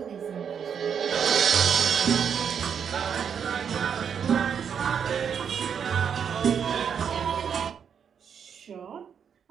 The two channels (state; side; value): quieter; left; 7.5 dB